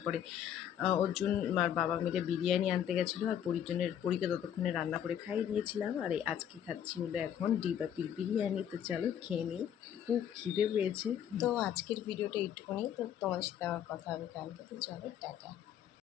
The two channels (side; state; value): right; quieter; 9.7 dB